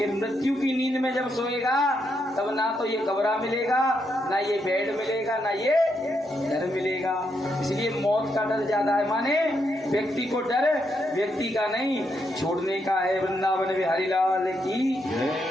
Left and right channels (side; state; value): both; normal; correlation 0.80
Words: मृत्यु की नींद में जब सोएगा तब ना तो ये कमरा मिलेगा, ना ये बेड मिलेगा, ना ये घर मिलेगा। इसलिए मौत का डर ज्यादा है। माने व्यक्ति को डर व्यक्ति का नहीं, छोड़ने का है। वृंदावन बिहारी लाल की।